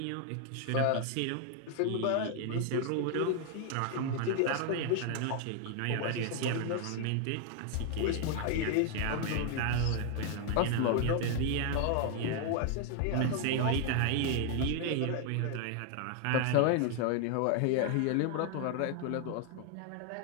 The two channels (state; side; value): different; both; correlation 0.00